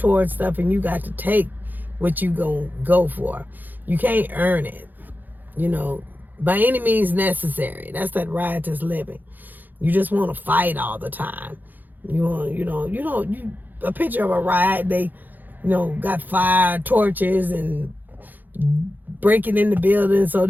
stuff, and you got to take what you go for. You can't earn it, by any means necessary. That's that riotous living. You just want to fight all the time. A picture of a riot, they got fire torches and breaking in the building so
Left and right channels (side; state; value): left; late; 0.086 ms